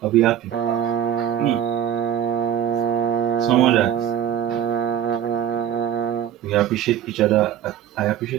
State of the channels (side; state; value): left; quieter; 9.8 dB